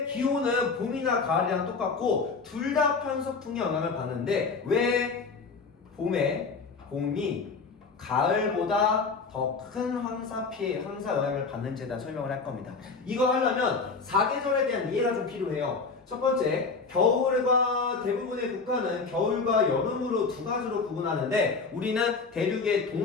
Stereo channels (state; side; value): quieter; right; 4.5 dB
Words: 기온은 봄이나 가을이랑 똑같고 둘 다 편서풍의 영향을 받는데 왜 봄이 가을보다 더 큰 황사 영향을 받는지에 대한 설명을 할 겁니다. 이거 하려면 사계절에 대한 이해가 좀 필요해요. 첫 번째, 겨울과 대부분의 국가는 겨울과 여름으로 두 가지로 구분하는데 우리는 대륙의